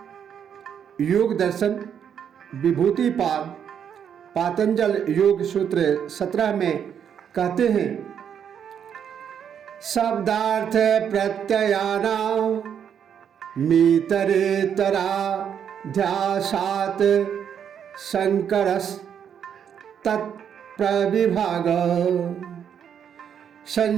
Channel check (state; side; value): quieter; left; 8.3 dB